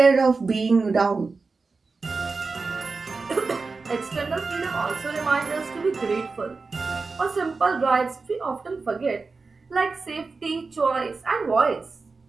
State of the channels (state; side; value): quieter; left; 4.2 dB